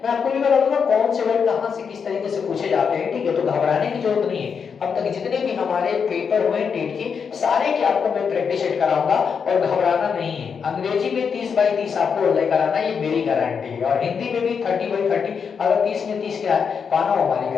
मैं आपको भी बता दूंगा कौन से वर्ड कहां से किस तरीके से पूछे जाते हैं, ठीक है। तो घबराने की जरूरत नहीं है। अब तक जितने भी हमारे पेपर हुए टेट के सारे के आपको मैं प्रैक्टिस सेट कराऊंगा, और घबराना नहीं है। अंग्रेजी में 30/30 आपको लेकर आना, ये मेरी गारंटी है। और हिंदी में भी 30/30, अगर 30 में 30 क्या है पाना, हमारी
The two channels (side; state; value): right; quieter; 6.4 dB